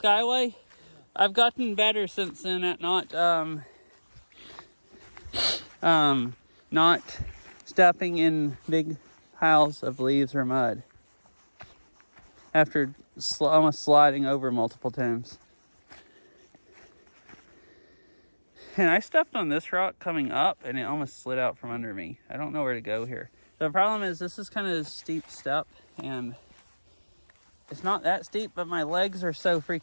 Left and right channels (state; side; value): inverted; both; correlation -1.00